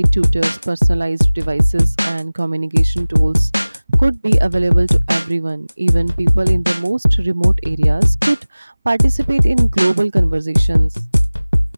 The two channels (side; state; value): both; inverted; correlation -0.99